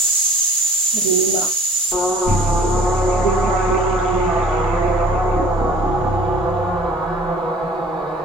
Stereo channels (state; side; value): normal; both; correlation 0.50